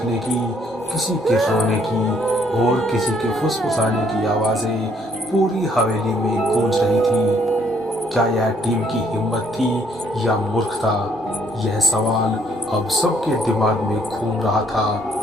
की, किसी के रोने की और किसी के फुसफुसाने की आवाजें पूरी हवेली में गूंज रही थी। क्या यह टीम की हिम्मत थी या मूर्खता? यह सवाल अब सबके दिमाग में घूम रहा था।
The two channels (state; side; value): normal; both; correlation 0.65